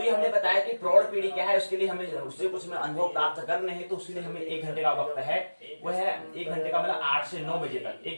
ये हमने बताया कि प्रौढ़ पीढ़ी क्या है, उसके लिए हमें उससे कुछ अनुभव प्राप्त करने हैं, तो उसके लिए हमें 1 घंटे का वक्त है, वो है 1 घंटे का मतलब 8 से 9 बजे तक,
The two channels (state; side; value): inverted; both; correlation -1.00